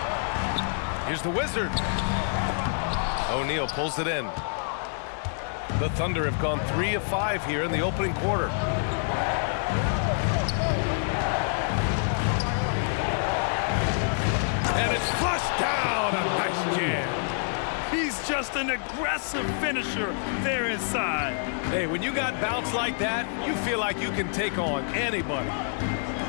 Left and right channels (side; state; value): right; silent; digital silence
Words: Here's the Wizard. O'Neal pulls it in. The Thunder have gone 3 of 5 here in the opening quarter. And it's flushed down. A nice jam. an aggressive finisher there inside. Hey, when you got bounce like that, you feel like you can take on anybody.